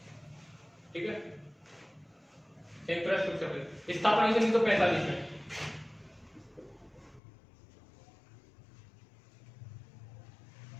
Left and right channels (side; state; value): right; drops out; at 7.2 s